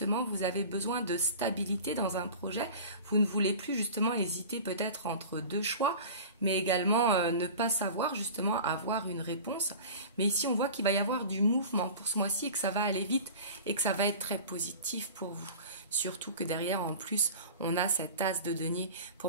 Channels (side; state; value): both; inverted; correlation -0.37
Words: vous avez besoin de stabilité dans un projet. Vous ne voulez plus justement hésiter peut-être entre deux choix, mais également ne pas savoir justement avoir une réponse. Mais ici, on voit qu'il va y avoir du mouvement pour ce mois-ci et que ça va aller vite et que ça va être très positif pour vous. Surtout que derrière, en plus, on a cet as de denier. Pour